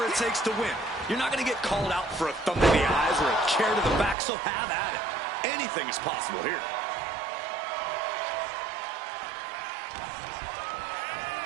it takes to win. You're not going to get called out for a thumb to the eyes or a chair to the back, so have at it. Anything is possible here.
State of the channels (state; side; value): drops out; left; at 4.2 s